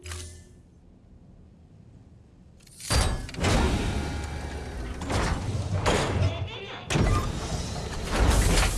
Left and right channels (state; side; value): identical; both; correlation 1.00